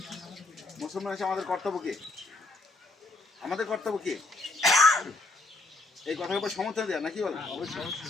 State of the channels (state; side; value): quieter; right; 3.1 dB